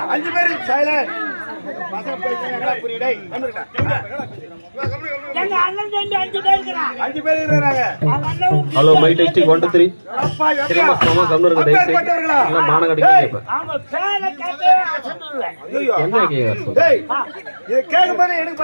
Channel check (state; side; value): inverted; both; correlation -1.00